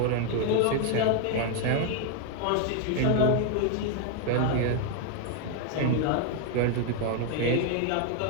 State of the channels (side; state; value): both; different; correlation 0.00